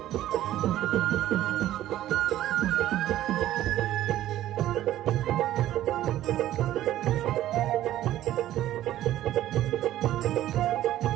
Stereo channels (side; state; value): left; quieter; 13.5 dB